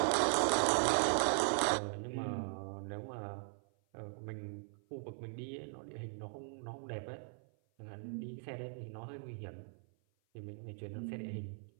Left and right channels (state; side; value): silent; left; 52 dB below the other